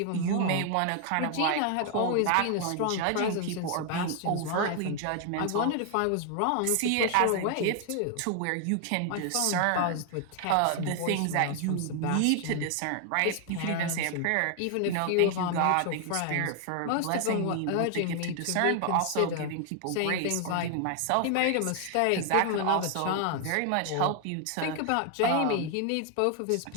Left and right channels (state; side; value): different; both; correlation 0.00